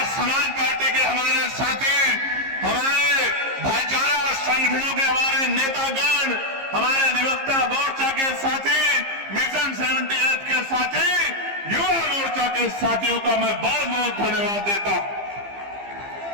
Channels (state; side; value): late; left; 15 ms